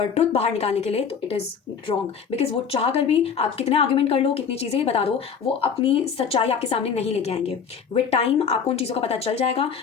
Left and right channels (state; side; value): quieter; right; 6.6 dB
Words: बाहर निकालने के लिए, तो इट इज़ रॉन्ग बिकॉज वो चाह कर भी आप कितने आर्ग्यूमेंट कर लो, कितनी चीज़ें बता दो, वो अपनी सच्चाई आपके सामने नहीं लेके आएंगे। विद टाइम आपको उन चीज़ों का पता चल जाएगा,